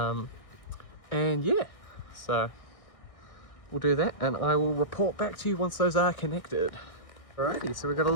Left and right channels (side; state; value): right; late; 1.6 ms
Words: yeah, so we'll do that, and I will report back to you once those are connected. Alrighty, so we've got a